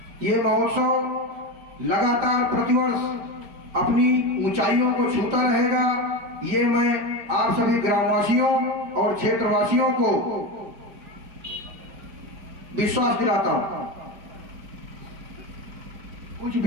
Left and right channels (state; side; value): late; left; 4.8 ms